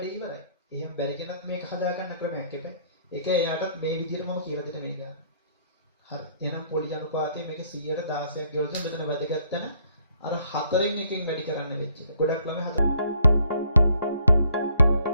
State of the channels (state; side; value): inverted; both; correlation -0.66